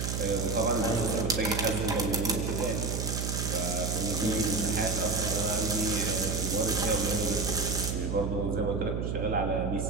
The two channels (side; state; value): right; noise; hum, 1 dB below the sound